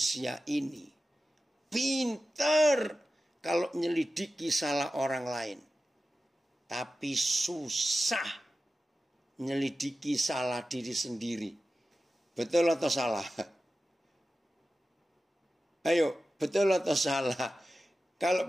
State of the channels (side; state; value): both; normal; correlation 0.94